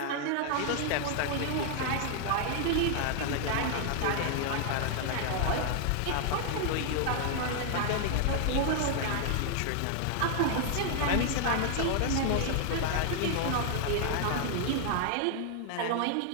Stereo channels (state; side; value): different; both; correlation 0.00